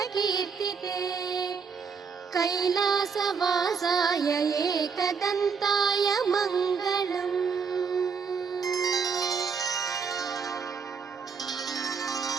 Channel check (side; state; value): left; quieter; 5.8 dB